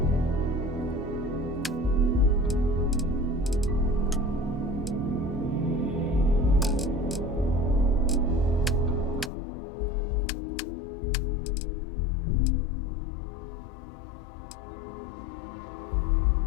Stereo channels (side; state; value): right; drops out; at 9.3 s